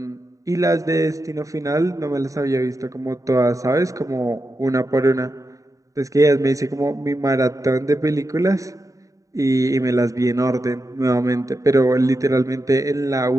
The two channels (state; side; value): late; left; 0.16 ms